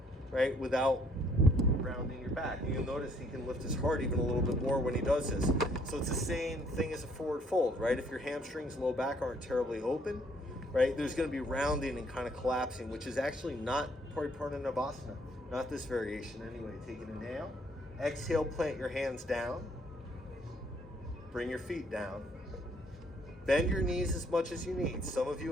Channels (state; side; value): normal; both; correlation 0.65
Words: right, without rounding your back? And you'll notice he can lift his heart even a little bit more when he does this. So it's the same thing as a forward fold, right? If your hamstrings, low back aren't terribly open, right, there's going to be rounding and kind of collapsing, which is actually not Pariparna-Navasana, not this variation anyway. Take an inhale. Exhale, plant your hands down. Bring your feet down. Bend your knees as much as you need. Some of